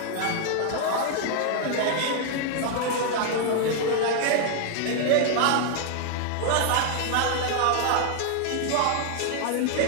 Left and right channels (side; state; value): both; different; correlation 0.00